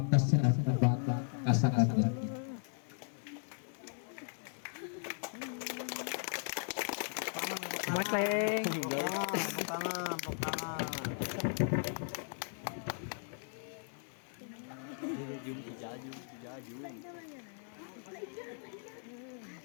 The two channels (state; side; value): silent; right; 53 dB below the other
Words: saya Bapak Kasanggan. Makleng. Tangan.